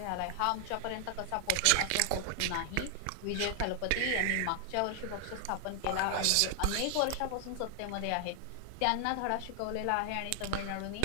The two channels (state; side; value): different; both; correlation 0.00